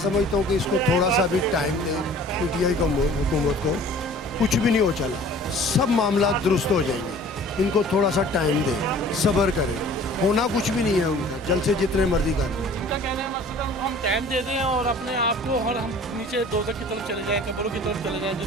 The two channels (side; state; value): both; normal; correlation 0.48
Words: हूँ कि इसको थोड़ा सा भी टाइम दे पीटीआई को, हुकूमत को। कुछ भी नहीं हो चला, सब मामला दुरुस्त हो जाएंगे। इनको थोड़ा सा टाइम दे, सब्र करें। होना कुछ भी नहीं है उनका, जल से जितने मर्जी कर लें। उनका कहना है मतलब हम टाइम दे दें और अपने आप को, और हम नीचे दोज़ख की तरफ चले जाएं, कब्रों की तरफ चले जाएं।